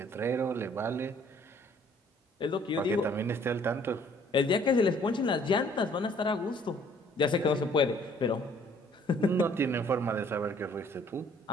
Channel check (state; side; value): normal; both; correlation 0.59